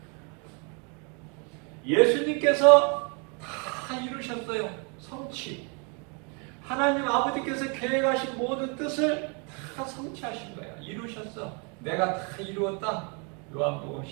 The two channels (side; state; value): left; quieter; 35.0 dB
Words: 예수님께서 다 이루셨어요. 성취. 하나님 아버지께서 계획하신 모든 뜻을 다 성취하신 거야. 이루셨어. 내가 다 이루었다. 요한복음